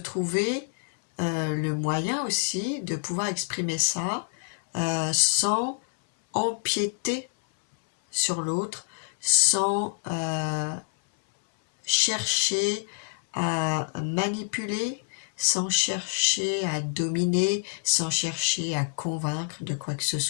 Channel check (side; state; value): right; silent; 60 dB below the other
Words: le moyen aussi de pouvoir exprimer ça sans empiéter sur l'autre, sans chercher à manipuler, sans chercher à dominer, sans chercher à convaincre de quoi que ce